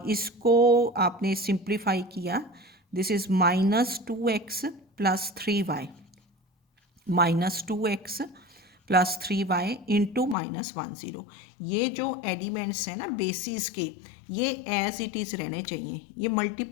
इसको आपने सिंप्लीफाई किया, this is minus 2x plus 3y, minus 2x plus 3y into minus 1 0। ये जो एलिमेंट्स हैं ना बेसिस के, ये एज इट इज़ रहने चाहिए, ये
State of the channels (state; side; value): drops out; right; at 10.4 s